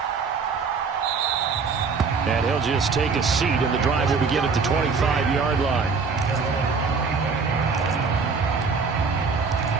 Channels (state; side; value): quieter; left; 5.0 dB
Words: And he'll just take a seat, and the drive will begin at the 25-yard line.